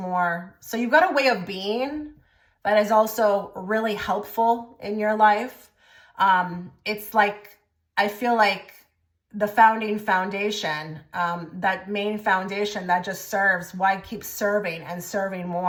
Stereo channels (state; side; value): identical; both; correlation 1.00